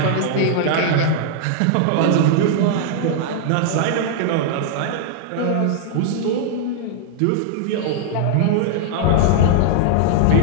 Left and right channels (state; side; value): different; both; correlation -0.01